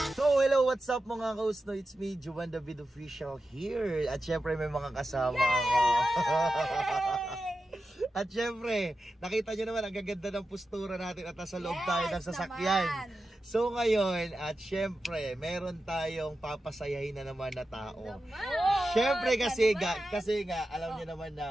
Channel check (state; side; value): normal; both; correlation 0.91